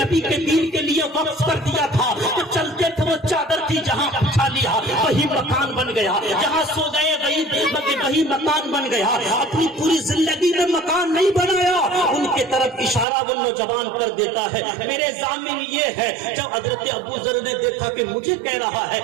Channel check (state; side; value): drops out; left; at 13.1 s